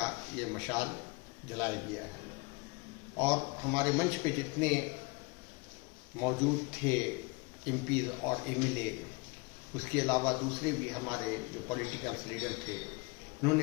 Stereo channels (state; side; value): quieter; right; 28.6 dB